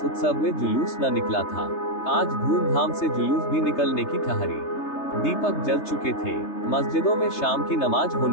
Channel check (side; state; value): right; late; 3.3 ms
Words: उत्सव में जुलूस न निकला था। आज धूमधाम से जुलूस भी निकलने की ठहरी। दीपक जल चुके थे। मस्जिदों में शाम की नमाज